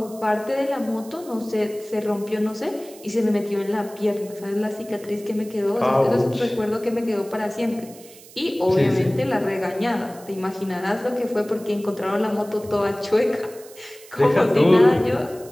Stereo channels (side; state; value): right; noise; hiss, 21 dB below the sound